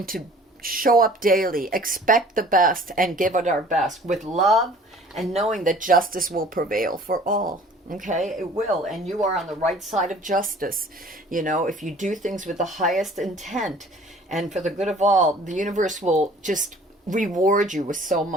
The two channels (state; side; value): normal; both; correlation 0.50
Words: to show up daily, expect the best, and give it our best with love, and knowing that justice will prevail for all. Okay, it will, and you are on the right side of justice. You know, if you do things with the highest intent and for the good of all, the universe will just reward you with so